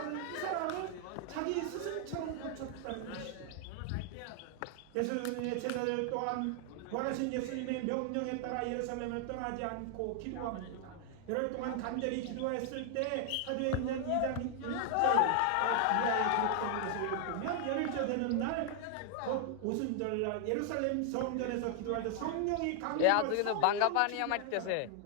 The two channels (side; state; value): both; different; correlation 0.00